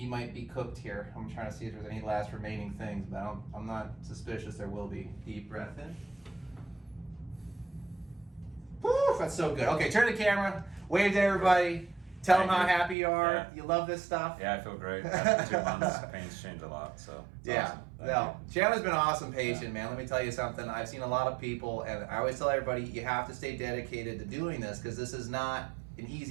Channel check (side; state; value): left; drops out; at 13.0 s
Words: might be cooked here. I'm trying to see if there's any last remaining things, but I'm not suspicious there will be. Deep breath in. Woo, that's so good. Okay, turn the camera. Wave to everybody. Tell them how happy you are. Yeah. You love this stuff. Yeah, I feel great. After 2 months, pain's changed a lot, so it's awesome. No. Chandler's been an awesome patient, man. Let me tell you something. I've seen a lot of people, and I always tell everybody, you have to stay dedicated to doing this because this is not an